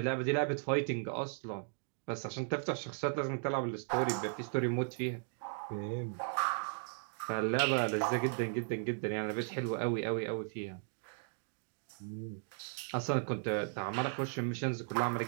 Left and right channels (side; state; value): left; silent; 53 dB below the other